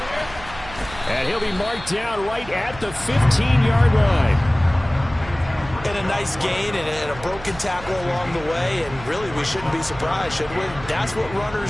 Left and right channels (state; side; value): noise; right; hum, 15 dB below the sound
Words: And he'll be marked down right at the 15-yard line. And a nice gain and a broken tackle along the way, and really we shouldn't be surprised, should we? That's what